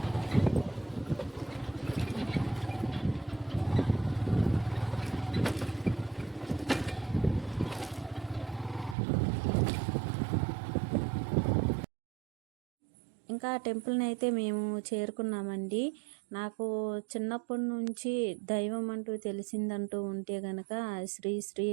ఇంకా టెంపుల్ని అయితే మేము చేరుకున్నామండి. నాకు చిన్నప్పటి నుంచి దైవం అంటూ తెలిసిందంటూ ఉంటే గనక శ్రీ శ్రీ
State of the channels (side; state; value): left; drops out; at 9.0 s